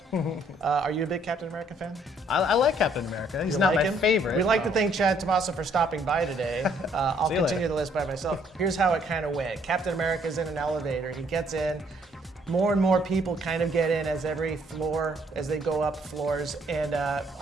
are you a big Captain America fan? I like Captain America. He's not my favorite. We'd like to thank Chad Tomaso for stopping by today. I'll continue the list by myself. Here's how it kind of went. Captain America's in an elevator. He gets in. More and more people kind of get in as they go up floors, and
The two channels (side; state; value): both; normal; correlation 0.66